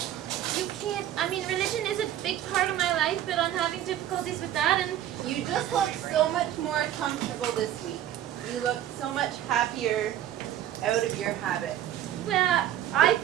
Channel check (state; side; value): quieter; left; 11.7 dB